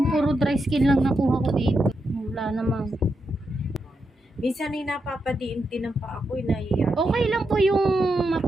puro dry skin lang nakuha ko dito. Wala naman. Minsan ay napapadiin din ng pa ako, nahiya. Okay lang po yung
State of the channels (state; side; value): normal; both; correlation 0.84